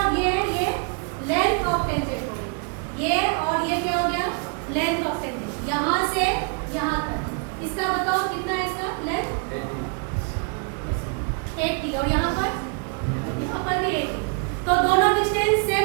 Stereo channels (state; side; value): quieter; left; 36.8 dB